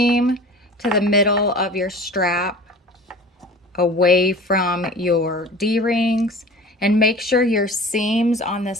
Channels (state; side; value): normal; both; correlation 0.41